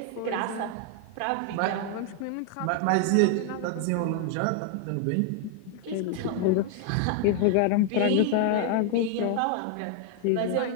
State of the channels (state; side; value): different; both; correlation 0.00